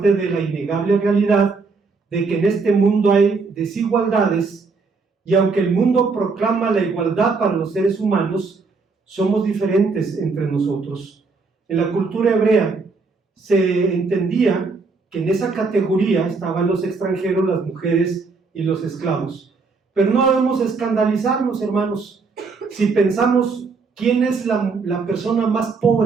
de la innegable realidad de que en este mundo hay desigualdades y aunque el mundo proclama la igualdad para los seres humanos, somos diferentes entre nosotros. En la cultura hebrea se entendía que en esa categoría estaban los extranjeros, las mujeres y los esclavos. Pero no debemos escandalizarnos, hermanos, si pensamos quién es la persona más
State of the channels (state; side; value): quieter; left; 4.4 dB